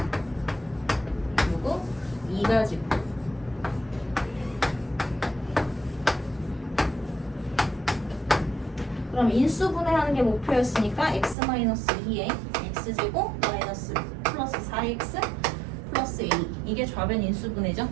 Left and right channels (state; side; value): drops out; left; at 11.4 s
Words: 그리고 2 가지고 그럼 인수분해하는 게 목표였으니까 x-2에 x제곱 마이너스 플러스 4x 플러스 a 이게 좌변 인수분해죠.